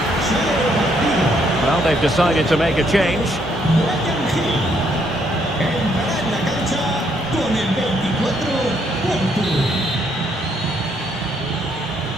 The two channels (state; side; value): normal; both; correlation 0.71